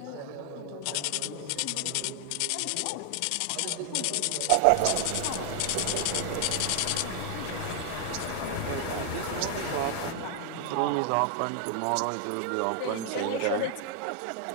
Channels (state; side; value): different; both; correlation 0.00